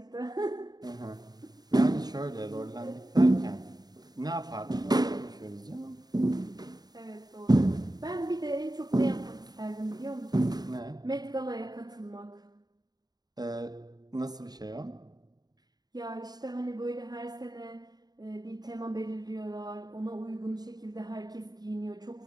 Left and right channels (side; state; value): left; late; 0.19 ms